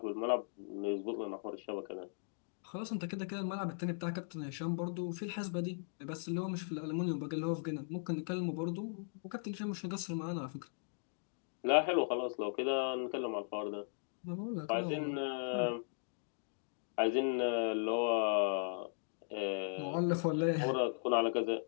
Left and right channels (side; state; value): right; silent; digital silence